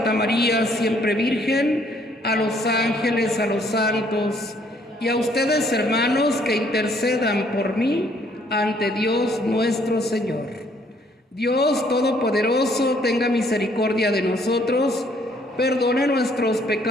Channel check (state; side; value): normal; both; correlation 0.64